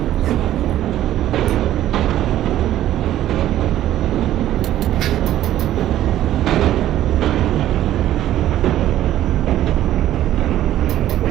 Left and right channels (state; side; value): quieter; left; 12.9 dB